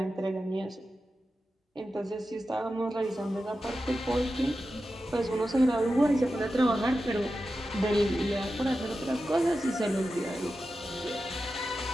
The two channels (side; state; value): both; normal; correlation 0.92